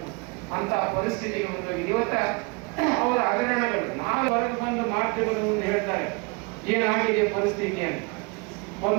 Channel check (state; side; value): quieter; left; 29.5 dB